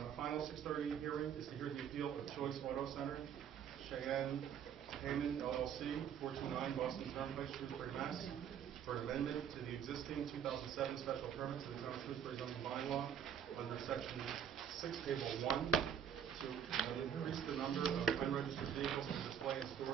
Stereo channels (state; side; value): quieter; left; 8.3 dB